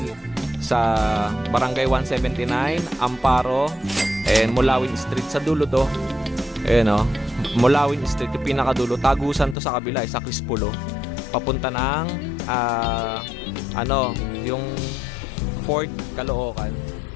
sa Barangay 179, Amparo, and Mulawin Street. Sa dulo to. Ayan o, Mulawin Street, yung pinakadulo. Tagusan to sa kabila, sa Crispulo. Papunta ng yung Fort Caloocan.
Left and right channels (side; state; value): right; drops out; at 9.6 s